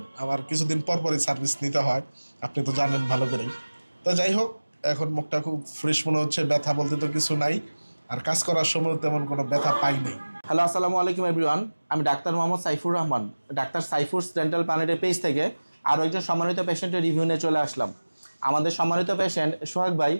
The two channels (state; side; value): inverted; both; correlation -1.00